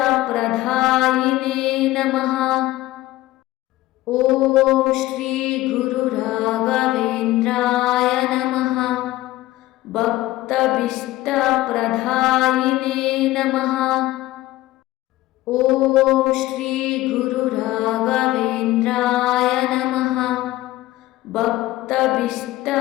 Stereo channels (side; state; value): right; quieter; 16.9 dB